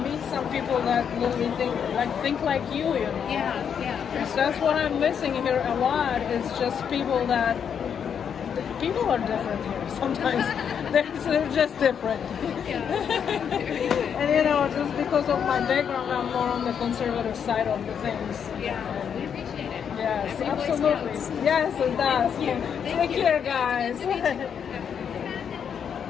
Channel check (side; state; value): right; quieter; 7.7 dB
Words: some people that literally think like you, So that's what I'm missing here a lot. It's just people are different here. Sometimes they're just different. And just because of my background, I'm more on the conservative side of the things. Yeah, we appreciate it. Yes, Every voice absolutely. counts. Yes, it does. Thank you. Take care, guys.